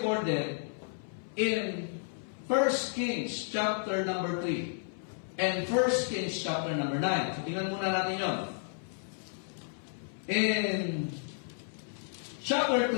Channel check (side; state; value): right; silent; 56 dB below the other